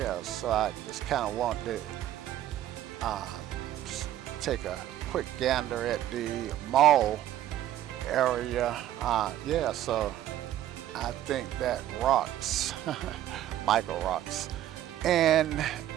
so I just kind of want to take a quick gander at the mall area. Yeah, so I think that rocks. Michael rocks. And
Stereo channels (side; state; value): left; quieter; 12.5 dB